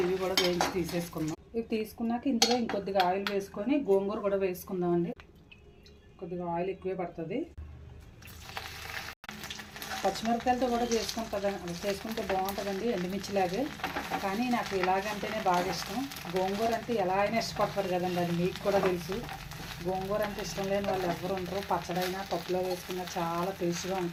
ఇవి కూడా వేయించి తీసేసుకుందాం. ఇవి తీసుకున్నాక ఇందులో ఇంకొద్దిగా ఆయిల్ వేసుకొని గోంగూర కూడా వేసుకుందామండి. కొద్దిగా ఆయిల్ ఎక్కువే పడుతుంది. పచ్చిమిరపకాయలతో కూడా చేసుకుంటే బాగుంటుందండి, ఎండుమిర్చిలాగే. కానీ నాకు ఇలాగంటేనే బాగా ఇష్టం. గోంగూర అంటే ఎలా అయినా ఇష్టపడతారు కదండి, అది మీకు కూడా తెలుసు. గోంగూర అంటే ఇష్టం లేని వాళ్ళు ఎవరు ఉండరు. పచ్చడైనా పప్పులో వేసుకున్నా చాలా టేస్ట్గా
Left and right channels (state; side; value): identical; both; correlation 1.00